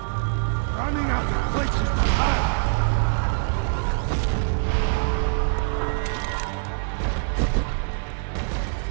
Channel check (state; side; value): silent; left; digital silence